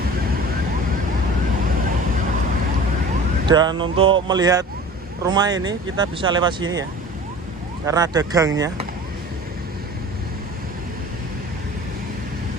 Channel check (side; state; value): both; normal; correlation 0.41